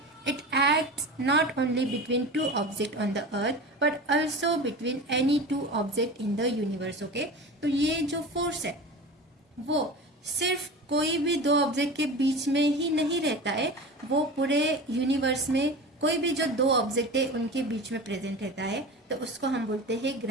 it acts not only between two objects on the earth but also between any two objects in the universe. Okay, तो ये जो फोर्स है वो सिर्फ कोई भी दो ऑब्जेक्ट के बीच में ही नहीं रहता है, वो पूरे यूनिवर्स में कोई भी जो दो ऑब्जेक्ट है उनके बीच में प्रेजेंट रहता है, तो उसको हम बोलते हैं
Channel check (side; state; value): both; normal; correlation 0.32